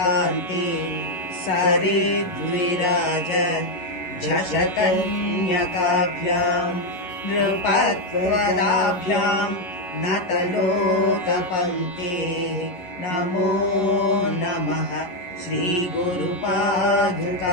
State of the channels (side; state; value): right; late; 11 ms